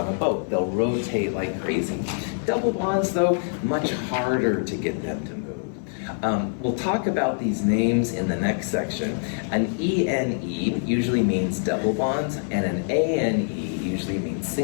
a boat. They'll rotate like crazy. Double bonds, though, much harder to get them to move. We'll talk about these names in the next section. An ENE usually means double bonds, and an ANE usually means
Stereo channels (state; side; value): silent; right; 56 dB below the other